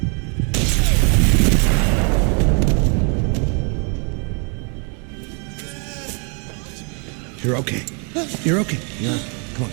You're okay. You're okay. Yeah. Come on,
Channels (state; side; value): quieter; left; 37.2 dB